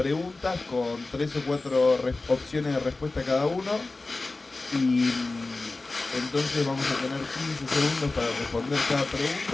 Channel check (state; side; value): quieter; right; 3.4 dB